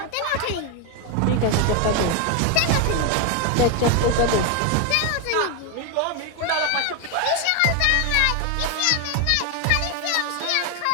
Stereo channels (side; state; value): both; different; correlation 0.01